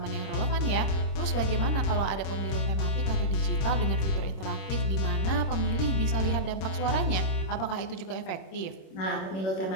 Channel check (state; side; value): late; right; 26 ms